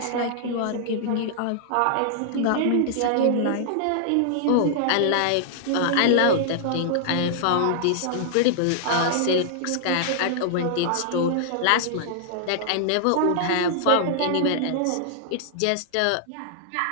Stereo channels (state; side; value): different; both; correlation -0.01